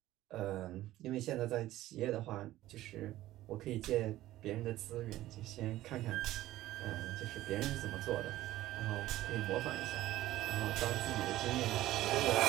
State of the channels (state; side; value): quieter; left; 15.3 dB